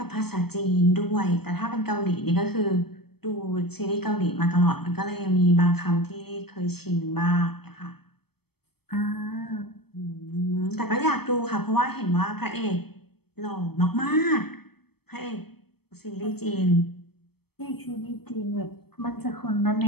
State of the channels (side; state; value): right; late; 0.96 ms